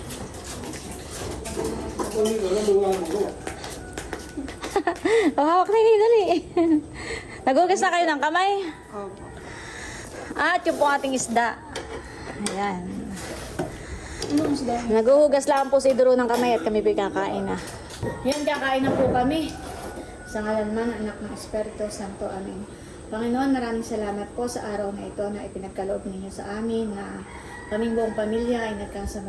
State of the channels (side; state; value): both; identical; correlation 1.00